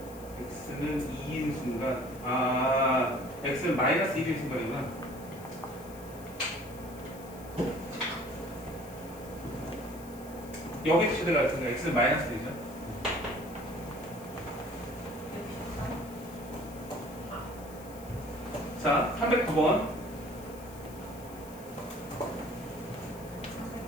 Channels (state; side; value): noise; left; hiss, 20 dB below the sound